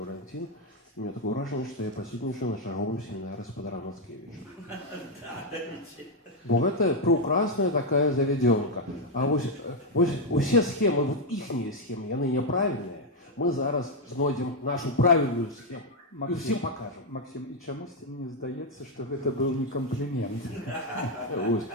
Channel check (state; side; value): normal; both; correlation 0.02